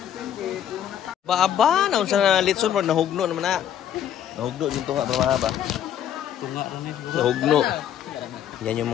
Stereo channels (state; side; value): quieter; right; 10.0 dB